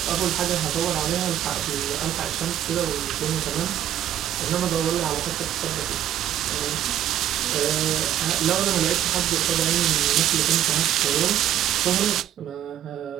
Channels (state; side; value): quieter; left; 11.3 dB